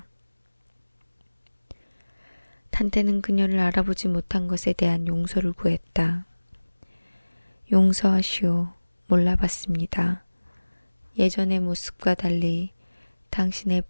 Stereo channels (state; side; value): inverted; both; correlation -1.00